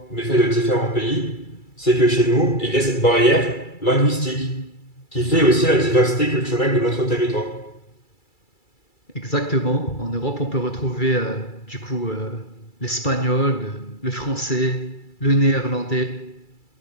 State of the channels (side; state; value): right; late; 2.3 ms